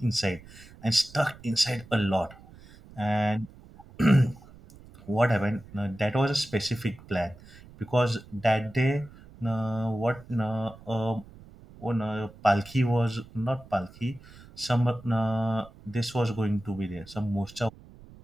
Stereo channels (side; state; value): right; noise; rumble, 21 dB below the sound